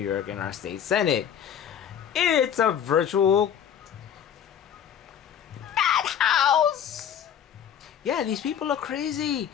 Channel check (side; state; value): right; quieter; 8.9 dB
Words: York in our state senate. It's a virtual house. Yeah, these people are crazy.